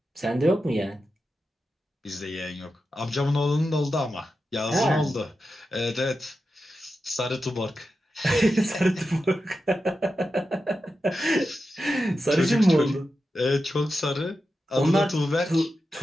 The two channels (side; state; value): both; normal; correlation 0.90